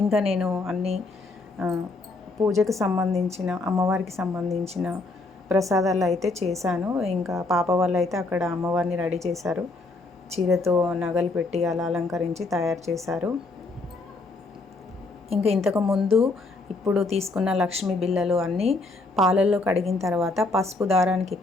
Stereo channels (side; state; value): right; quieter; 3.3 dB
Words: ఇంకా నేను అన్నీ పూజకు సంబంధించిన అమ్మవారికి సంబంధించిన ప్రసాదాలు అయితే చేశాను. ఇంకా పాప వాళ్ళు అయితే అక్కడ అమ్మవారిని రెడీ చేశారు. చీరతో నగలు పెట్టి అలా అలంకరించి తయారు చేశారు. ఇంకా ఇంతకుముందు ఇప్పుడు తీసుకున్న లక్ష్మీ బిళ్ళలు అన్నీ పాలల్లో కడిగిన తర్వాత పసుపు దారానికి